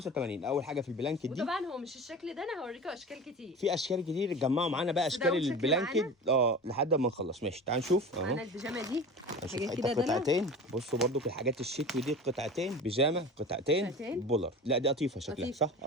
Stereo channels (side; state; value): both; normal; correlation 0.34